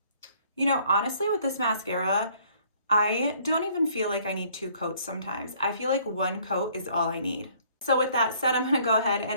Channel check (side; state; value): both; inverted; correlation -0.60